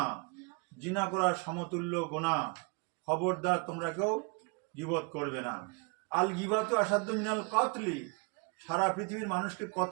জিনা করার সমতুল্য গুনাহ। খবরদার তোমরা কেউ গীবত করবে না। আল গীবাতু আসাদ্দু মিনাল কতলি, সারা পৃথিবীর মানুষকে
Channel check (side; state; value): left; quieter; 31.5 dB